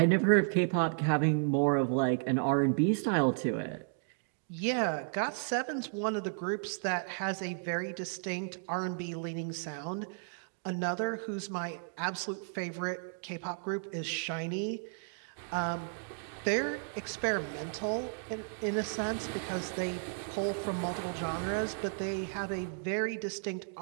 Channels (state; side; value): silent; left; digital silence